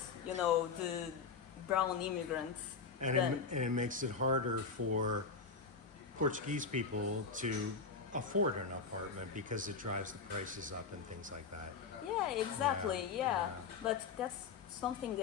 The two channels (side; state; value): right; quieter; 5.1 dB